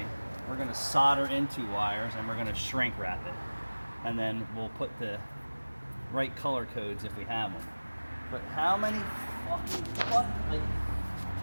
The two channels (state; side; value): inverted; both; correlation -1.00